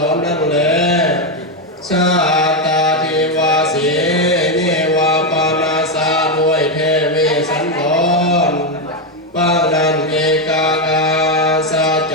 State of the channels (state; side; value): normal; both; correlation 0.06